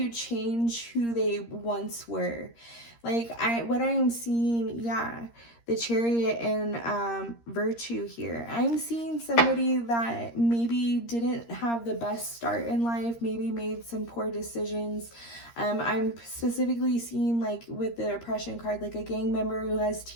change who they once were. Like what I am seeing, yeah, the Chariot and Virtue here. I'm seeing somebody that maybe didn't have the best start in life, maybe made some poor decisions. I'm specifically seeing, like with the Oppression card, like a gang member who has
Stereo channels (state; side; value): late; right; 13 ms